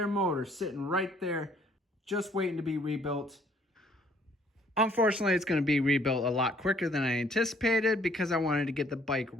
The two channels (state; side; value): normal; both; correlation 0.62